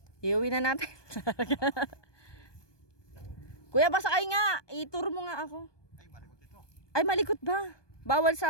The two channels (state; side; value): late; right; 1.2 ms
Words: Iuwi na natin. Kuya, pasakay nga. I-tour mo nga ako. Ay, malikot ito. Ay, malikot ba? Bawal